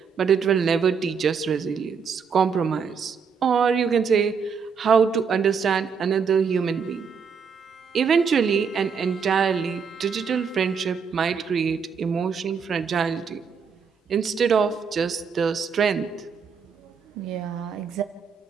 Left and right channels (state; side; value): quieter; left; 6.2 dB